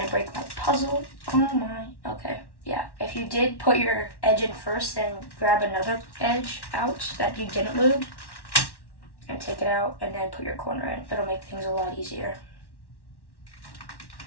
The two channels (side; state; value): right; late; 1.1 ms